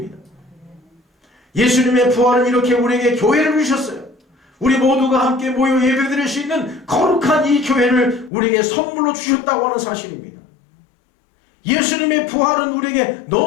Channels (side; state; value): right; drops out; at 8.3 s